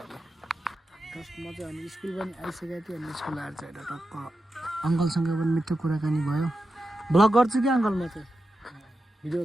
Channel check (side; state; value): both; normal; correlation 0.90